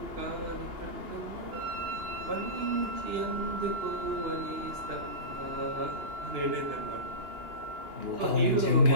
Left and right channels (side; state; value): left; late; 2.9 ms